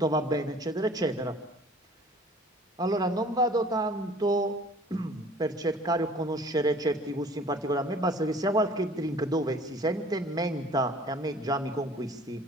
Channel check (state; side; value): normal; both; correlation 0.50